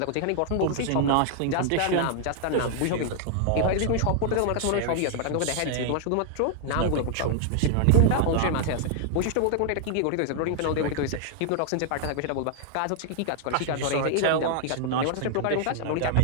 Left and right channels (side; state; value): both; different; correlation 0.00